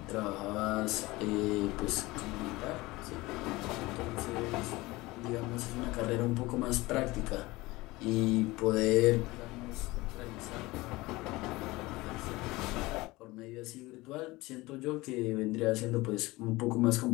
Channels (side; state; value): right; quieter; 20.8 dB